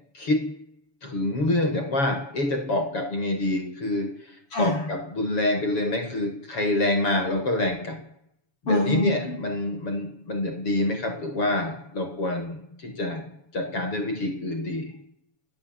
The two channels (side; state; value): right; late; 7.1 ms